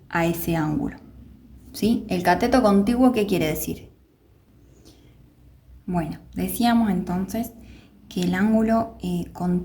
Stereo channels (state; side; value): identical; both; correlation 1.00